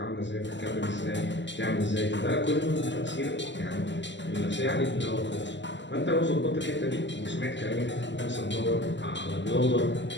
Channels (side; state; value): right; late; 0.53 ms